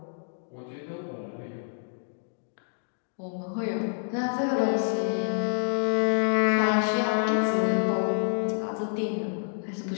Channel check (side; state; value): right; silent; digital silence